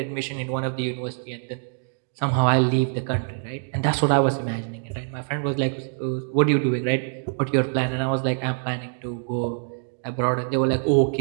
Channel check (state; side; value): silent; left; digital silence